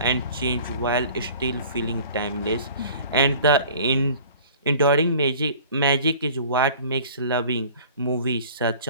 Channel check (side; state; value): both; inverted; correlation -0.47